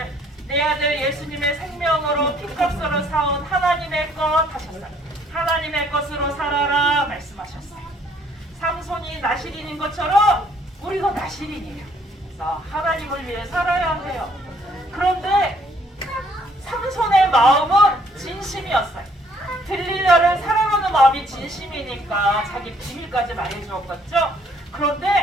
내 아들 예수님의 생명으로 피값으로 사온 하나님의 것 하셨어요. 하나님의 것으로 살아라 말씀하셨어요. 삼손이 나실인인 것처럼 우리도 나실인이에요. 그래서 하나님을 위해 살아야 해요. 그런데 삼손의 마음은 진심이었어요. 들리려를 사랑하는 마음이 진심이니까 자기 비밀까지 말해주었겠죠.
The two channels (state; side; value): normal; both; correlation 0.64